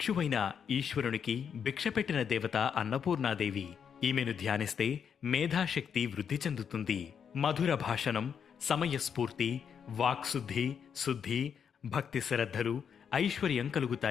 ఈశ్వరునికి భిక్ష పెట్టిన దేవత అన్నపూర్ణాదేవి. ఈమెను ధ్యానిస్తే మేధాశక్తి వృద్ధి చెందుతుంది. మధుర భాషణం, సమయస్ఫూర్తి, వాక్శుద్ధి, శుద్ధి, భక్తి శ్రద్ధలు, ఐశ్వర్యం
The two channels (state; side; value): quieter; right; 7.4 dB